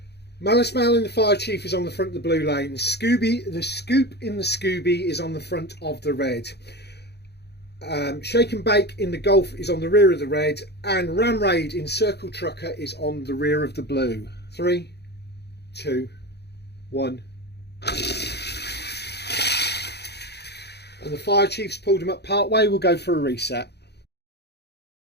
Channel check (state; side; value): late; right; 0.48 ms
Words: MaliceMal in the Fire Chief is on the front of the blue lane. The Scoupe in the Scooby is on the front of the red. Shake and Bake in the Golf is on the rear of the red, and RamRaid in Circle Trucker is on the rear of the blue. 3, 2, 1. And the Fire Chief's pulled him up part way. We'll go for a reset.